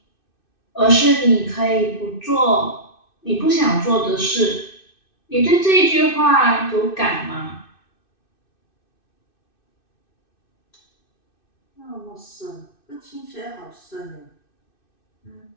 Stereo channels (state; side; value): late; right; 2.6 ms